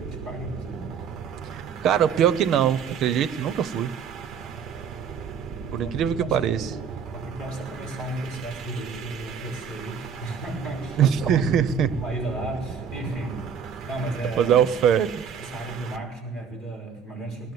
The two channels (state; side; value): quieter; left; 7.2 dB